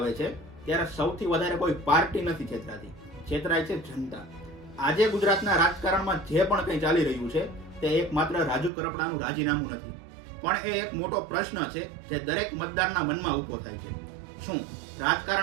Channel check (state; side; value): drops out; left; at 8.7 s